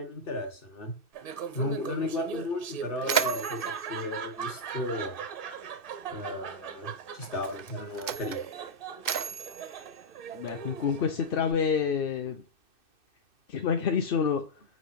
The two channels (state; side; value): late; right; 2.6 ms